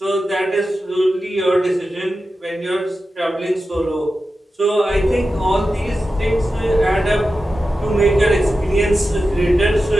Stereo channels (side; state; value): both; normal; correlation 0.92